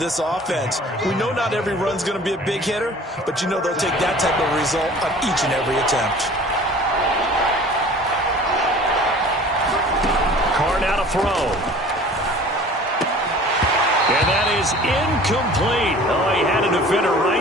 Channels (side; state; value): both; normal; correlation 0.46